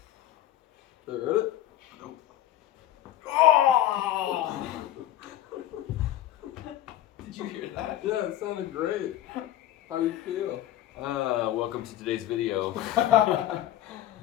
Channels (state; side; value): quieter; right; 13.1 dB